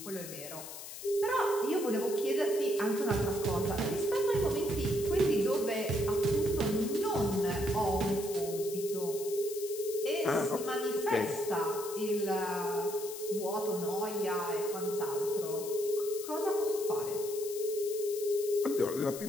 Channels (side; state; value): left; noise; hiss, 11 dB below the sound